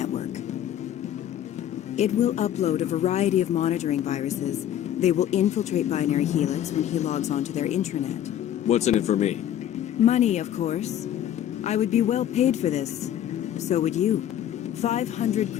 It will upload a variety of monitoring viruses. They will infiltrate Binary Helix when he logs onto their intranet. What's in it for me? Money, of course. I would be well paid for this. So would you. 500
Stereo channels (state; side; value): quieter; right; 11.0 dB